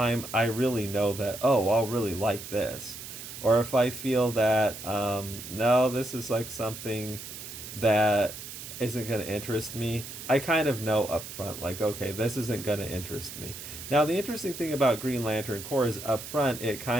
I really know that, oh, I'll really like this. Or if I feel that, no, this is like something that isn't going to interest me, I kind of know up front, like, okay, this isn't going to interest me. Now, the interesting thing about Green Lantern Corps is up front, it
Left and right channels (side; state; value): right; noise; hiss, 11 dB below the sound